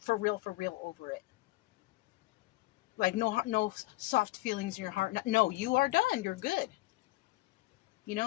for real over it. Like, no soft feelings in your heart. No, you are done. You're good. You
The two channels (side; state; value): right; quieter; 19.9 dB